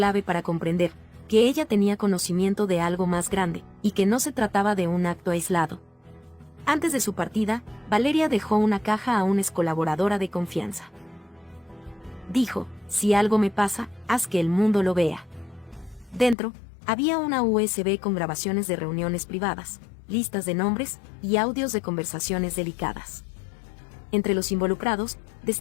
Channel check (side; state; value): right; drops out; at 16.4 s